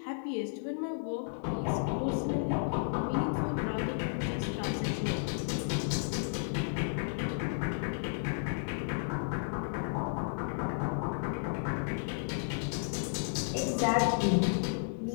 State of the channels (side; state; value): right; silent; 56 dB below the other